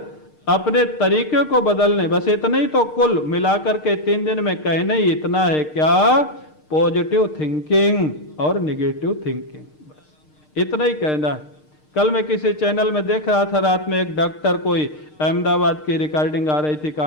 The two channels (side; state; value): right; late; 6.6 ms